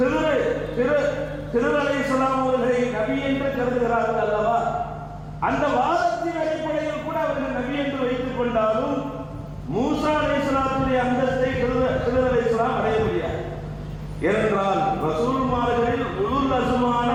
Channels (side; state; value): both; identical; correlation 1.00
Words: அலைஹிஸ்ஸலாம் அவர்களை நபி என்று கருதுகிறார்கள் அல்லவா? அந்த வாதத்தின் அடிப்படையில் கூட அவர்கள் நபி என்று வைத்துக் கொண்டாலும் மூசா அலைஹிஸ்ஸலாத்துடைய அந்தஸ்தை ஹிதர் அலைஹிஸ்ஸலாம் அடைய முடியாது. ஏனென்றால் ரசூல்மார்களில் உலுல் அஸ்மான